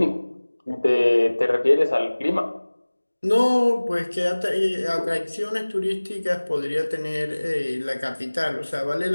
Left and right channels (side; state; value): both; inverted; correlation -1.00